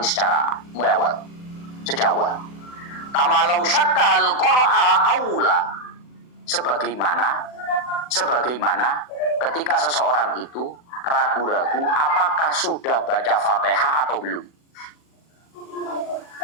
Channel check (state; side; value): late; right; 40 ms